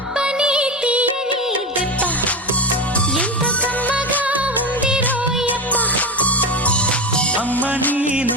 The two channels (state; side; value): normal; both; correlation 0.20